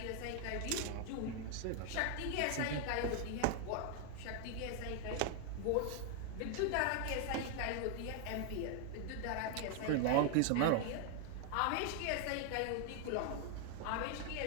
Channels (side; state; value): both; different; correlation 0.00